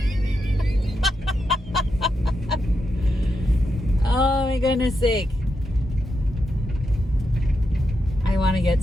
Oh my goodness sake. I want to get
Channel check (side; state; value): both; normal; correlation 0.85